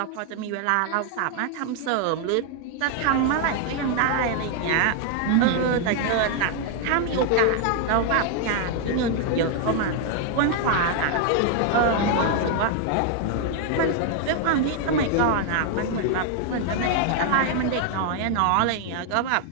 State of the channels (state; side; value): different; both; correlation 0.00